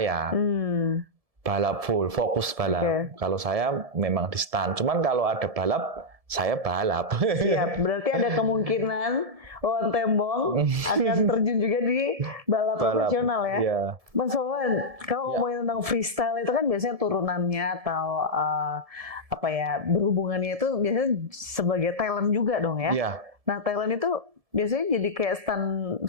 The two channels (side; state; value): left; late; 1.7 ms